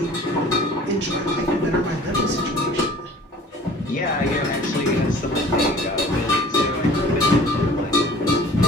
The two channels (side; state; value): both; normal; correlation 0.47